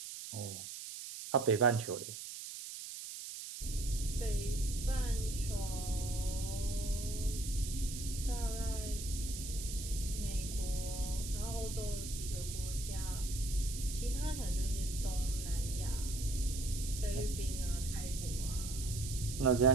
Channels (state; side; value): noise; right; hiss, 8 dB below the sound